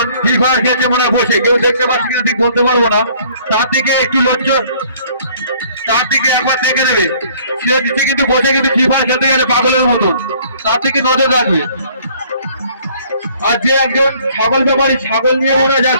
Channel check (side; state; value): both; inverted; correlation -0.57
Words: free fire খেলছে মনে বসে, কেউ দেখতে পাচ্ছি কিনা ঠিক বলতে পারবো না, তার দিকে একটু লোকজন তার দিকে একবার দেখে নেবে। সে দিচ্ছে কিন্তু বসে কিন্তু ফ্রি ফায়ার খেলতে গেলে পাগলের মতন, তার দিকে নজর রাখবে। আর যে একজন ছাগল ব্যাপারী ছাগল নিয়ে ওরা